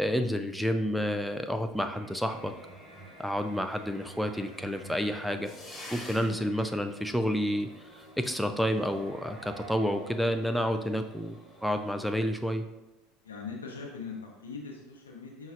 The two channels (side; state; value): both; normal; correlation 0.85